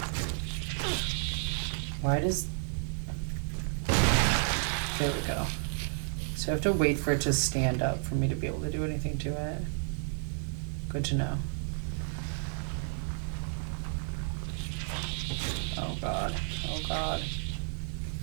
Why does... There we go. So I have to wait for it to stand up for me to be able to do anything to it. Good to know. Oh god. Oh god.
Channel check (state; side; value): silent; left; 57 dB below the other